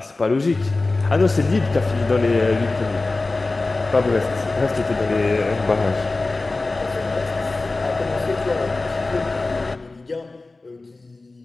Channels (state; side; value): quieter; right; 3.3 dB